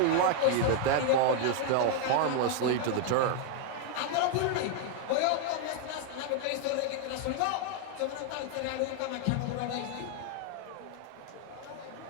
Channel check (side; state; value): both; different; correlation 0.00